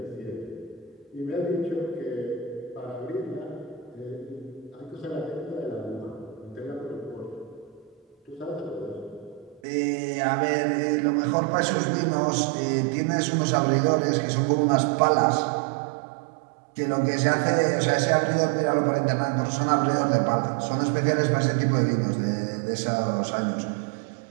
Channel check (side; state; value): left; drops out; at 9.6 s